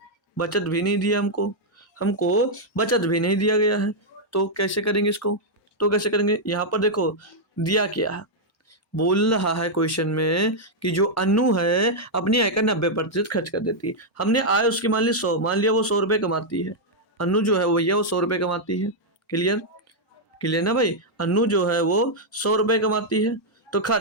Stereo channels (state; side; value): normal; both; correlation -0.04